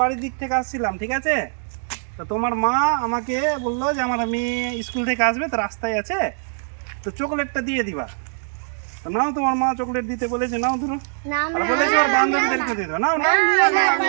বাড়ির দিক থেকে আসছিলাম, ঠিক আছে? তো তোমার মা আমাকে বললো যে আমার মেয়ে স্কুল থেকে আসবে, তো রাস্তায় আছে, তো চকলেটটা দিয়ে দিবা। তো নাও, তোমার মা চকলেট দিতে বলেছে, নাও ধরো। না আর বলেছে ওর বান্ধবীদেরকে দিয়ে দাও। নাও নাও,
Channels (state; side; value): silent; left; digital silence